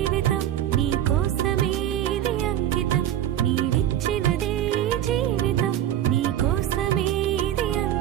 నీ కోసమే ఇది అంకితం నీవిచ్చినదే జీవితం నీ కోసమే ఇది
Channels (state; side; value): quieter; left; 11.5 dB